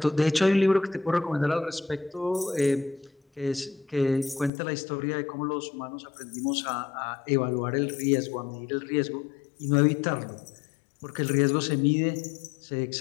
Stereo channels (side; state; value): right; drops out; at 4.5 s